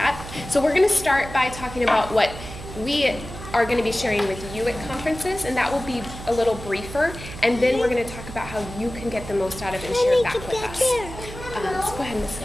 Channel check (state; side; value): noise; right; hum, 12 dB below the sound